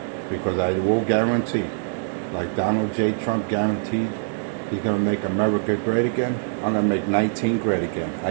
Because I will guarantee, like Donald J. Trump guaranteed, he's going to make America great again. I'm going to make 19 great again.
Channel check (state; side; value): silent; left; 55 dB below the other